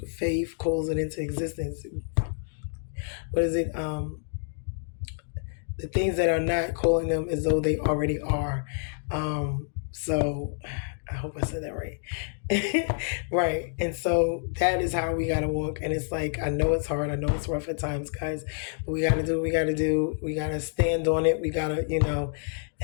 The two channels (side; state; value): right; silent; digital silence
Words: faith calls it into existence. What is it? The things that are not, calling them as though they already are. So I hope I said that right. Right. And so that is how we got to walk. And it's like, I know it's hard. I know it's rough at times, guys. But we got to do what we got to do. We got to stand on it. We got to,